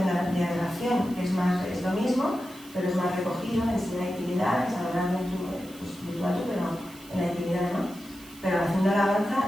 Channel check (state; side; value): noise; right; hiss, 20 dB below the sound